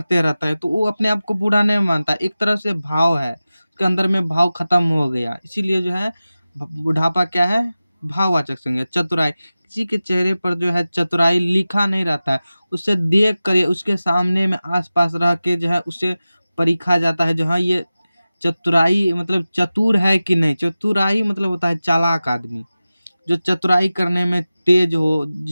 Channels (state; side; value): inverted; both; correlation -0.96